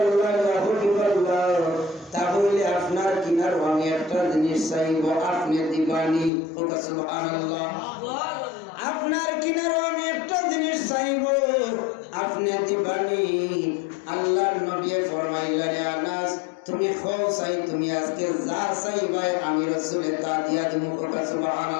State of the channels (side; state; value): right; drops out; at 6.3 s